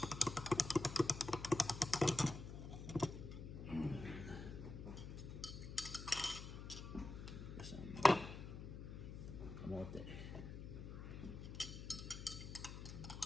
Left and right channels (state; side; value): noise; left; hum, 9 dB below the sound